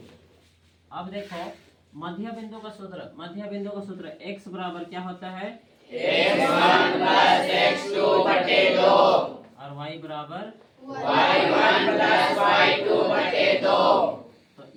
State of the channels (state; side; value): identical; both; correlation 1.00